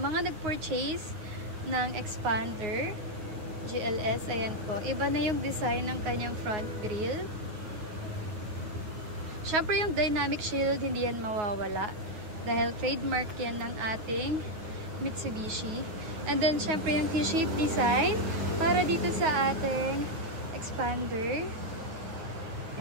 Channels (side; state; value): left; late; 9.5 ms